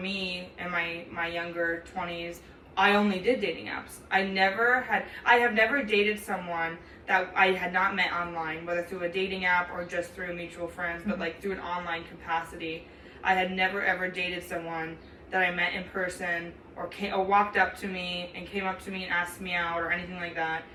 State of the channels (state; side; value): identical; both; correlation 1.00